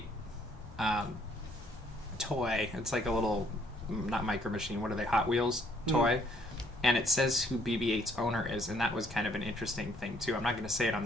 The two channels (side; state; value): both; normal; correlation 0.65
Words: toy. It's like a little, not Micro Machine, what are they, Hot Wheels toy? And it says who BB-8's owner is, and that was kind of an interesting thing too. I'm not going to say it on